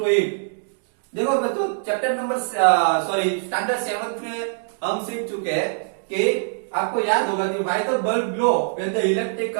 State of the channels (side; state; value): left; silent; digital silence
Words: it? देखो बच्चों, चैप्टर नंबर स्टैंडर्ड 7 में हम सीख चुके हैं कि आपको याद होगा कि why the bulb glow when the electric